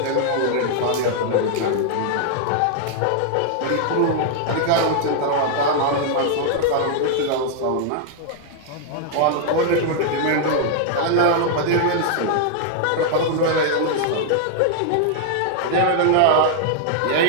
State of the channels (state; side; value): different; both; correlation 0.00